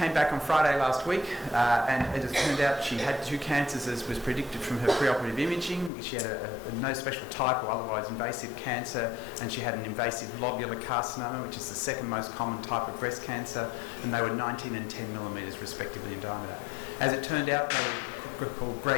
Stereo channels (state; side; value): drops out; right; at 5.9 s